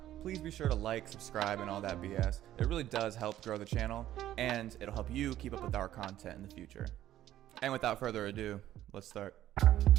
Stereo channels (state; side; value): quieter; left; 12.9 dB